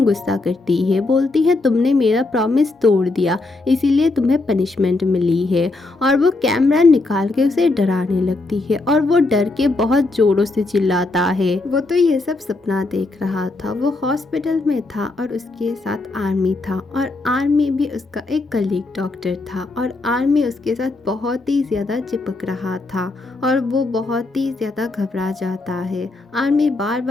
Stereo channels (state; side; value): quieter; right; 3.2 dB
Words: गुस्सा करती है, बोलती है तुमने मेरा प्रॉमिस तोड़ दिया, इसीलिए तुम्हें पनिशमेंट मिली है। और वो कैमरा निकाल के उसे डराने लगती है और वो डर के बहुत जोरों से चिल्लाता है। वो तो ये सब सपना देख रहा था। वो हॉस्पिटल में था और उसके साथ आर्मी था और आर्मी भी उसका एक कलीग डॉक्टर था और आर्मी उसके साथ बहुत ही ज्यादा चिपक रहा था और वो बहुत ही ज्यादा घबरा जाता है। आर्मी बार